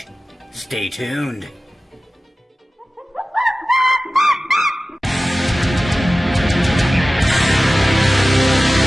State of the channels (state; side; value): normal; both; correlation 0.96